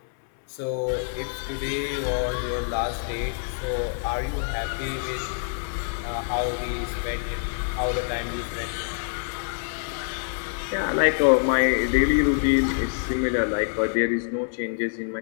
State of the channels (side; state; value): right; silent; 61 dB below the other